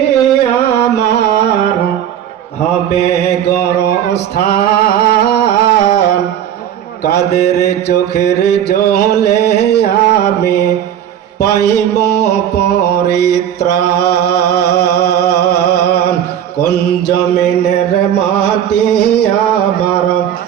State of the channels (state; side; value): quieter; left; 10.1 dB